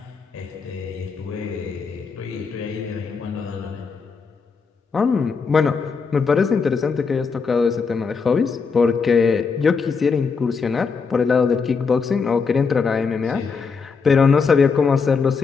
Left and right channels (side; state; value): right; quieter; 5.2 dB